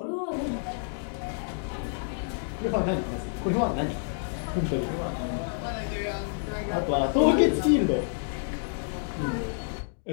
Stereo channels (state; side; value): silent; right; digital silence